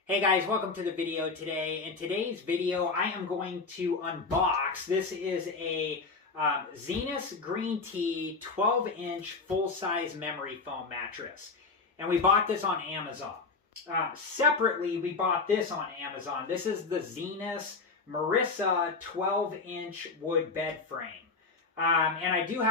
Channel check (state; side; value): quieter; right; 4.2 dB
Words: Hey guys, welcome to the video today. In today's video, I am going to unbox. This is a Zinus Green Tea 12-inch full-size memory foam mattress. And we bought this on Amazon. Separately, we bought this on Amazon. This is the Zinus Marissa 12-inch wood bed frame. And I do